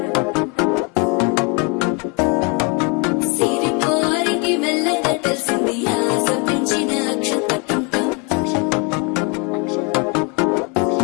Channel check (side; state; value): right; quieter; 32.6 dB